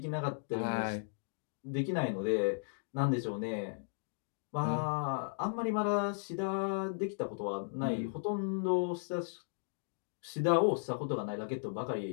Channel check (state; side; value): silent; right; digital silence